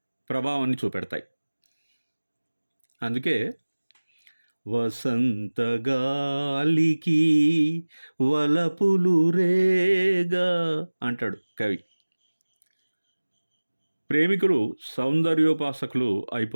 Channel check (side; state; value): both; inverted; correlation -1.00